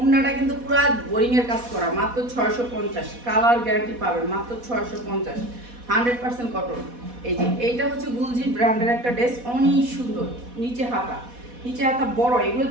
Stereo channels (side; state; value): left; late; 4.1 ms